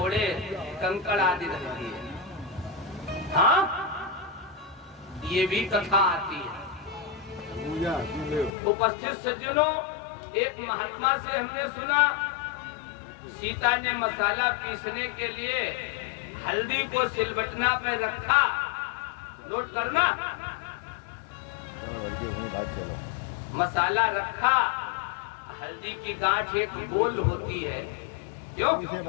कंकड़ आदि रखी है। हाँ, ये भी कथा आती है। उपस्थित सज्जनों, एक महात्मा से हमने सुना, सीता ने मसाला पीसने के लिए हल्दी को सिलबटना पे रखा। नोट करना, मसाला रखा, हल्दी की गांठ एक गोल होती है, क्यों?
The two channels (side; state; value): right; drops out; at 8.5 s